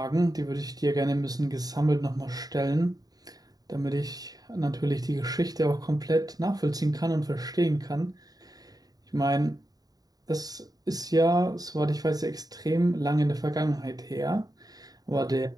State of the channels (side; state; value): left; late; 0.18 ms